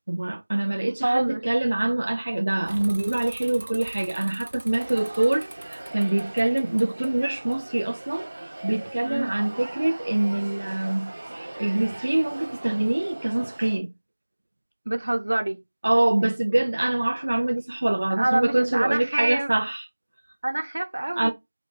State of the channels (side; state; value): both; inverted; correlation -1.00